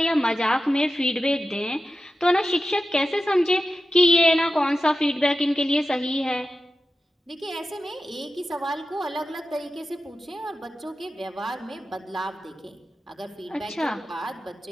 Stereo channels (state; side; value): normal; both; correlation 0.92